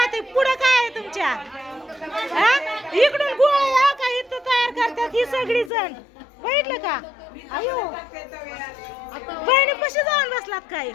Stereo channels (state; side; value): drops out; right; at 5.7 s